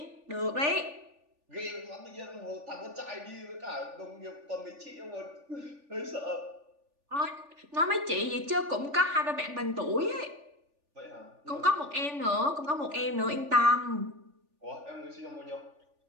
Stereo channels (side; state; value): left; late; 3.4 ms